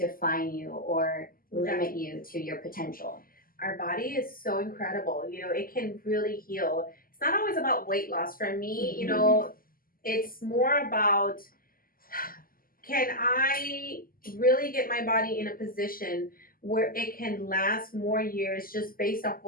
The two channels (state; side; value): late; right; 0.42 ms